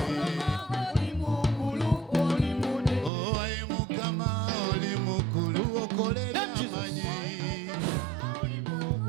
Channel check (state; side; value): drops out; left; at 3.1 s